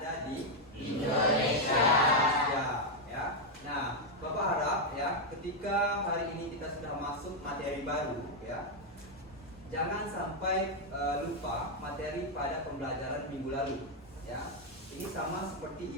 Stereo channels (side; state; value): both; normal; correlation 0.01